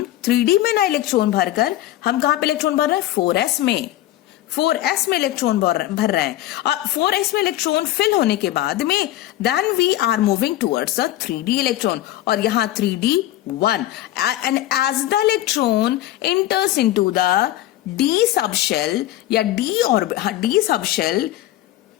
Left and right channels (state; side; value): quieter; right; 14.5 dB